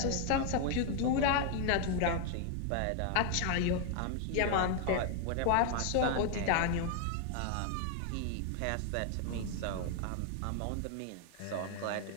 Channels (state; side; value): different; both; correlation 0.00